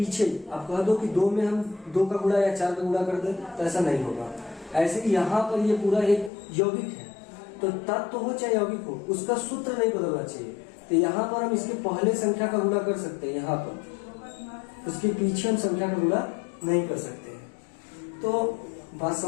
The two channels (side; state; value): right; drops out; at 6.3 s